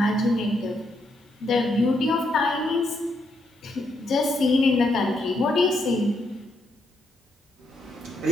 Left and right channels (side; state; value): both; normal; correlation 0.78